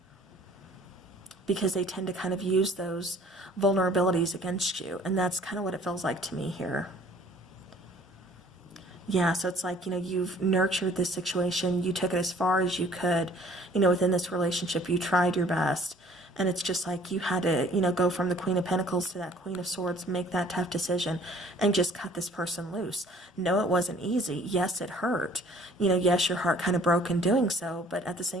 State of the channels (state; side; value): normal; both; correlation 0.55